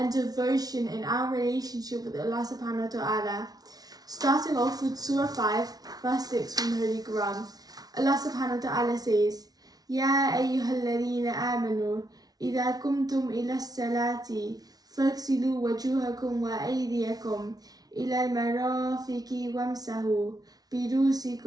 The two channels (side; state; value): left; late; 0.19 ms